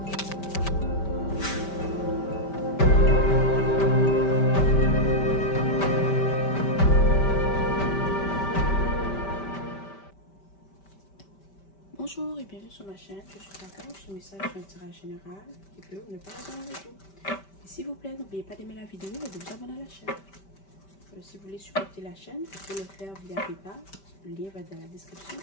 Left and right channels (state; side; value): late; right; 5.1 ms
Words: et bienvenue sur ma chaîne. Je suis Kaka, ce message est un tirage général qui peut ou ne pas résonner avec vous. Et s'il vous plaît, n'oubliez pas d'aimer la vidéo et de vous abonner à la chaîne. Si vous voulez supporter la chaîne, vous pouvez le faire via PayPal. Le lien va dans la description